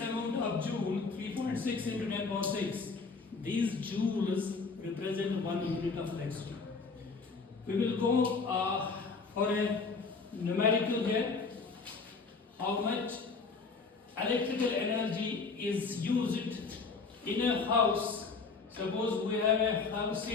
of joule, 3.6 into 10 power 6, these joules represent 1 unit of electricity. We will go for a numerical here. How much electrical energy is used in a house? Suppose we have a house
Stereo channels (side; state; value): right; quieter; 4.5 dB